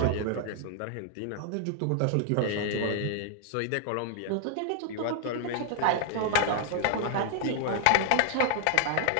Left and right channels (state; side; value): different; both; correlation 0.00